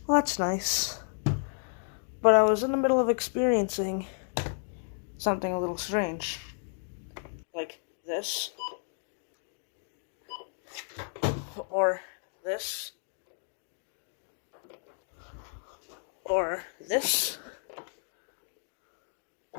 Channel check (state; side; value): silent; right; digital silence